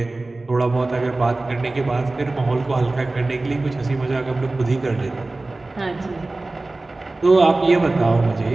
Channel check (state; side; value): quieter; left; 3.1 dB